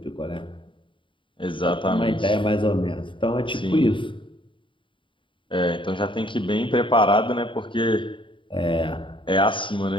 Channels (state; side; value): late; right; 0.24 ms